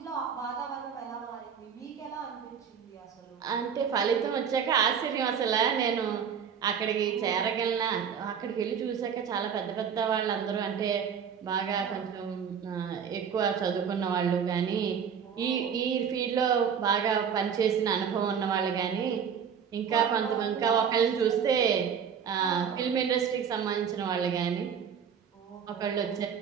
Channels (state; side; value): quieter; left; 7.4 dB